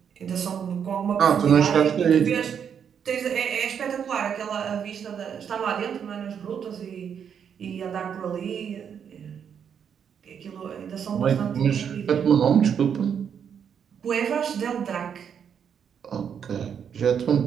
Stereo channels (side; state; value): left; quieter; 7.8 dB